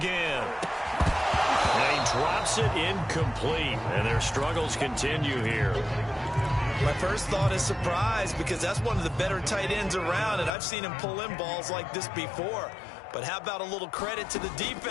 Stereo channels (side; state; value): right; drops out; at 10.5 s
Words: And he drops it incomplete, and their struggles continue here. My first thought is surprise because that's one of the better tight ends around, and I've seen him pull in balls like this before. But how about a little credit to the